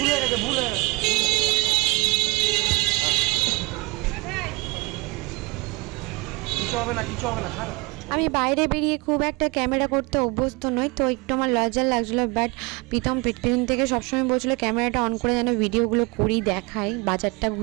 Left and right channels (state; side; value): quieter; left; 25.3 dB